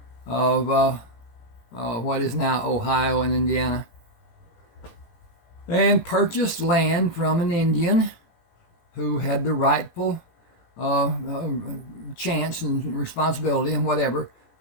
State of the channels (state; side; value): late; right; 18 ms